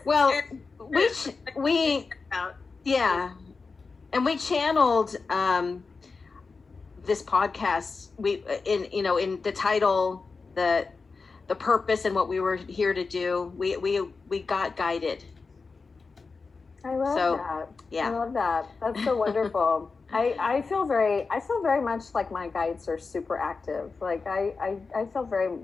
Well, we and we channeled this podcast in the title, the the purpose and what we were here to do. We got guided. I love that. Yeah. I love that. That's so wonderful. I feel very much like my guides are super active. Like I feel very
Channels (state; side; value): quieter; right; 4.4 dB